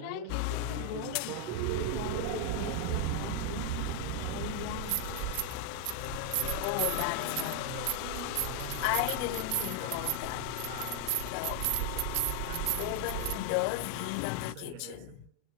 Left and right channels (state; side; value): different; both; correlation 0.00